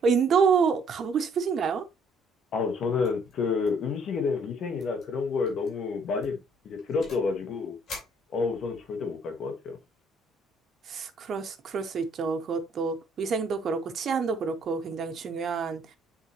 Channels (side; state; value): both; normal; correlation 0.63